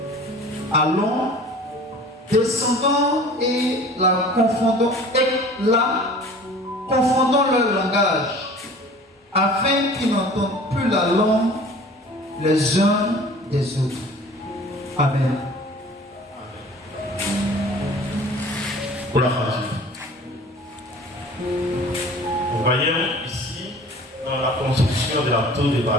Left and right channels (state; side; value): normal; both; correlation 0.45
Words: Allons, descendons et confondons leur langage, afin qu'ils n'entendent plus la langue les uns des autres. Amen. Pour la phrase. Nous voyons ici, dans la construction de la tour de